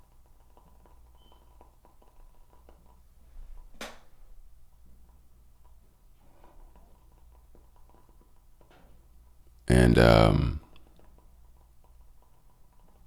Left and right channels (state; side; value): identical; both; correlation 1.00